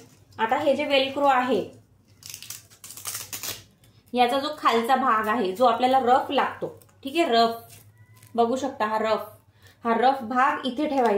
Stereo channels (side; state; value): both; identical; correlation 1.00